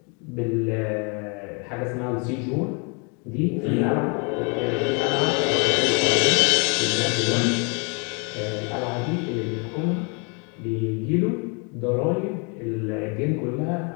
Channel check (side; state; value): right; quieter; 34.8 dB